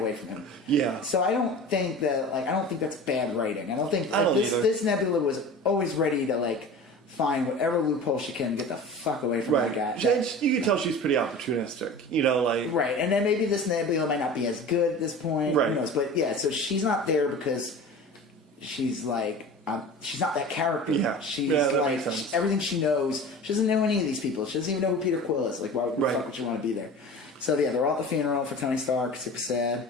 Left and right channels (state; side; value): normal; both; correlation 0.36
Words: from him. Yeah. So I don't think that's bad writing. I don't think this Nebula was always ready to like find whatever loophole she can, get the fuck away from that guy. You can tell she's pretty opportunistic, like right. And then maybe this Nebula might not be as good at this point. Right. Who knows? But yeah, so she's not there because she's like she's not that character. Yeah. She's like everything she knows. She doesn't know any of these people. She doesn't even know who Peter Quill is. Like, why the fuck would you want to be there? So yeah, they're all at the funeral for Tony Stark. Super